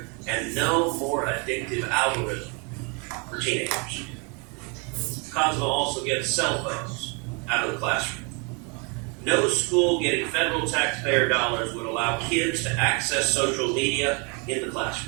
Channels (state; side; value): quieter; left; 33.3 dB